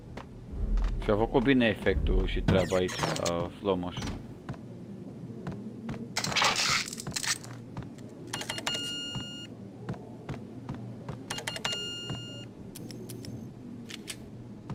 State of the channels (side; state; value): both; identical; correlation 1.00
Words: Și-a făcut bine efectul și treaba aici, la slow motion.